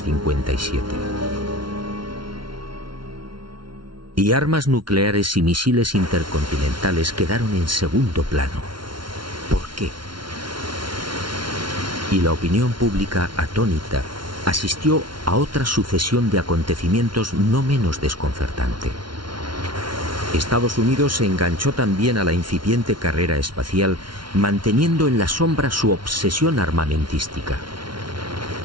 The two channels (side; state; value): left; late; 0.73 ms